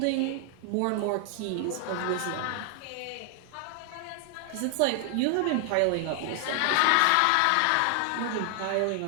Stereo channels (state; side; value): different; both; correlation 0.00